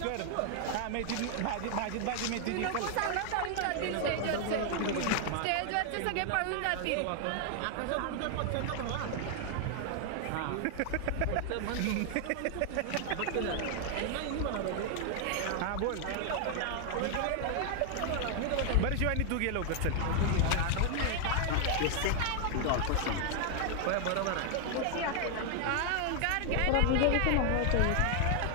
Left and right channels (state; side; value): different; both; correlation 0.00